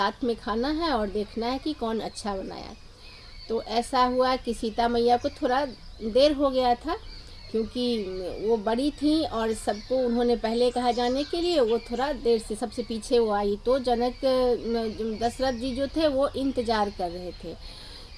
में खाना है और देखना है कि कौन अच्छा बनाया। तो ऐसा हुआ कि सीता मैया को थोड़ा देर हो गया था, क्योंकि वो बड़ी थी और सबको उन्होंने पहले कहा जाने के लिए, वो थोड़ा देर से सबसे पीछे वो आई। तो जनक दशरथ जी जो थे वो इंतज़ार कर रहे थे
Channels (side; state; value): both; identical; correlation 1.00